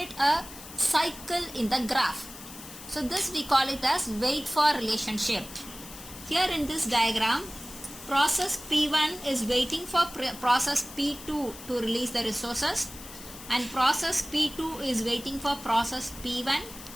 a cycle in the graph. So this we call it as wait for relationship. Here in this diagram, process P1 is waiting for process P2 to release the resources and process P2 is waiting for process P1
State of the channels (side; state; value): left; noise; hiss, 15 dB below the sound